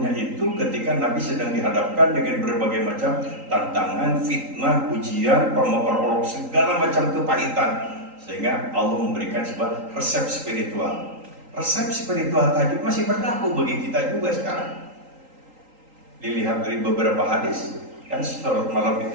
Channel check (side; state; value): left; late; 3.8 ms